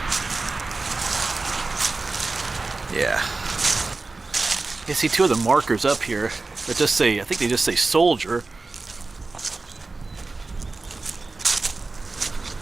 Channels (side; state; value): left; quieter; 3.6 dB